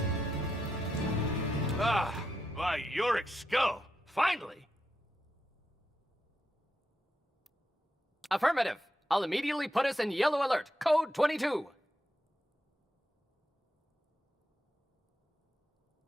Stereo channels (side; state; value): both; normal; correlation 0.84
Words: Ah, by Yorick's skull! Finally! Affirmative. I'll immediately put us in yellow alert. Code 22.